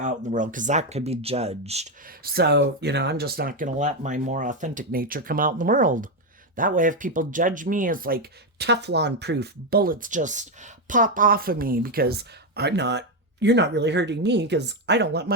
in the world because that could be judged. So, I'm just not going to let my more authentic nature come out in the world. That way, if people judge me as like Teflon proof, bullets just pop off of me because you're not really hurting me because I don't let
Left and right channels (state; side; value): normal; both; correlation 0.06